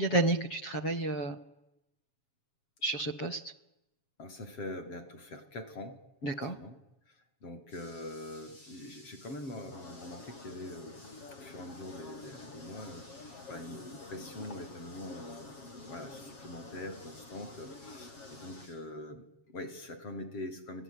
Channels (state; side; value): late; right; 7.3 ms